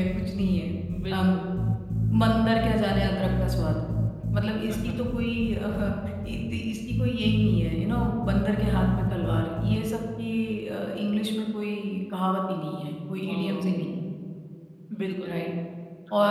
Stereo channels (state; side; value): identical; both; correlation 1.00